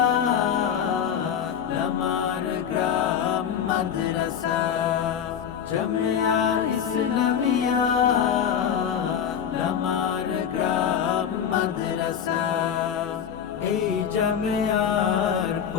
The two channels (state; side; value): quieter; right; 8.4 dB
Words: লামার গ্রাম মাদ্রাসা। জামিয়া ইসলামিয়া লামার গ্রাম মাদ্রাসা। এই জামিয়ার